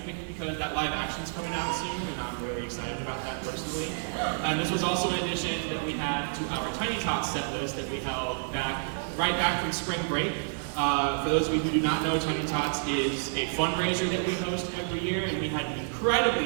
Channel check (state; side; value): silent; left; digital silence